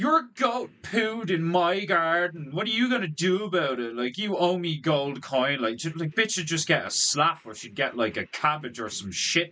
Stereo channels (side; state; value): both; identical; correlation 1.00